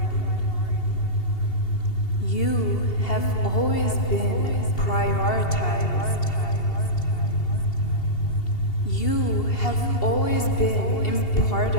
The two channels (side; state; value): right; late; 2.8 ms